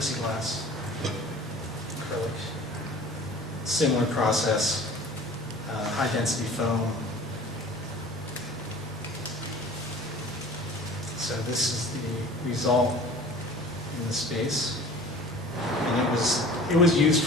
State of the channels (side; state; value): both; normal; correlation 0.44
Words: acrylic. Similar process, high density foam. So this is the result in the space. And it was used